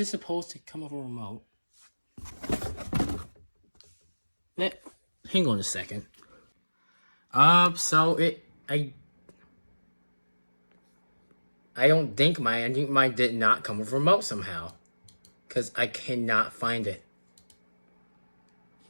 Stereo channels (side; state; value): both; inverted; correlation -1.00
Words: supposed to come with a remote? Hang on a second. So I don't think I think mine did not come with remote somehow. Because I cannot find it.